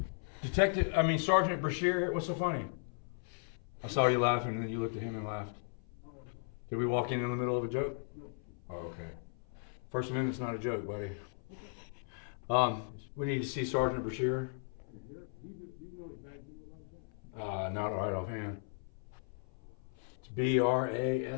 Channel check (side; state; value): right; silent; 54 dB below the other